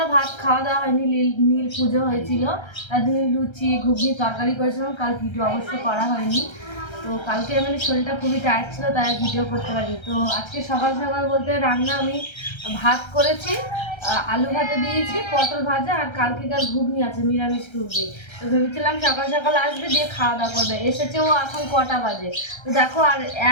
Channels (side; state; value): right; late; 1.3 ms